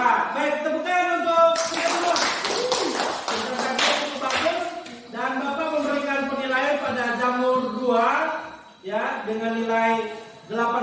baik, tepuk tangan untuk kita semua. Presentasinya cukup bagus dan Bapak memberikan penilaian pada jamur 2 ya dengan nilai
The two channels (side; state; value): both; identical; correlation 1.00